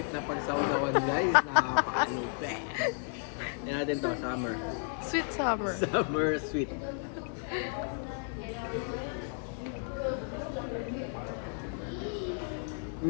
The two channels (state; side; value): silent; right; 56 dB below the other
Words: na pagsawsawan guys. Napaka-lupit. Yan natin to. Summer. Sweet Summer. Summer sweet.